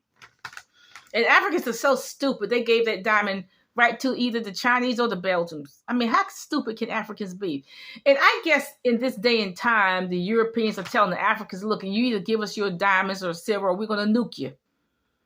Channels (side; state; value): both; identical; correlation 1.00